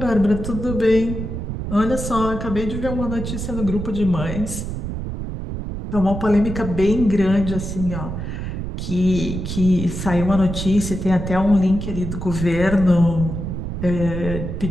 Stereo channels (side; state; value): right; noise; rumble, 5 dB below the sound